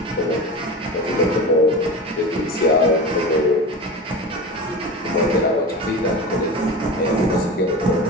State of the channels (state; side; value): normal; both; correlation 0.29